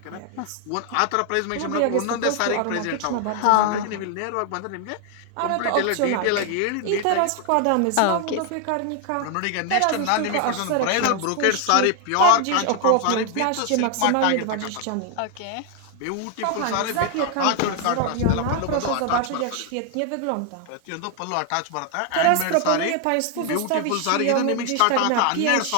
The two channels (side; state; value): both; different; correlation 0.01